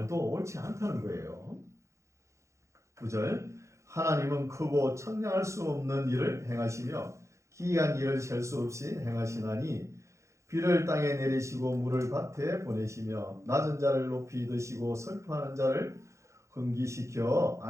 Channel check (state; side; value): late; left; 0.14 ms